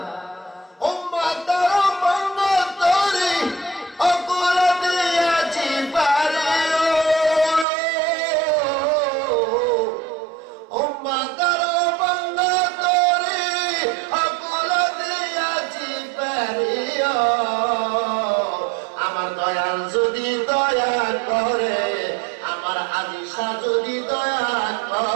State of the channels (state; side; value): drops out; left; at 7.7 s